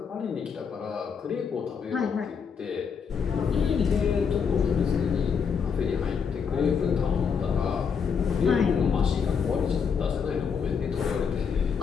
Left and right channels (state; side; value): quieter; right; 6.4 dB